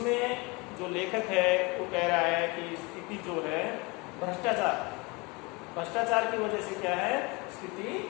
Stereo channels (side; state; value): right; quieter; 26.7 dB